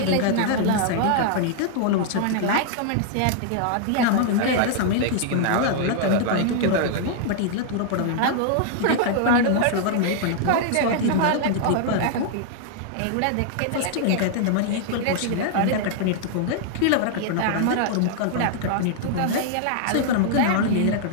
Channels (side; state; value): both; different; correlation -0.01